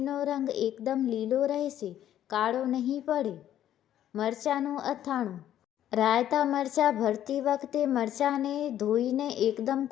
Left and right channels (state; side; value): quieter; right; 11.5 dB